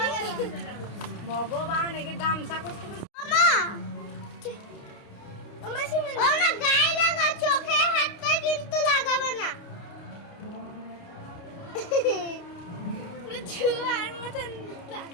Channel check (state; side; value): late; right; 29 ms